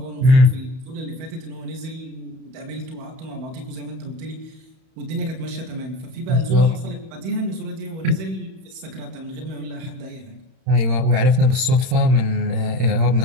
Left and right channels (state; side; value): late; left; 31 ms